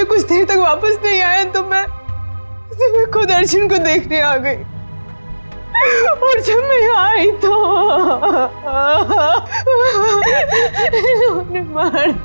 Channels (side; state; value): both; inverted; correlation -1.00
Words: कुछ देर तक वापस नहीं आया तो मैं खुद अर्जुन को देखने आ गई। और जब मैं यहाँ आई तो इन्होंने मार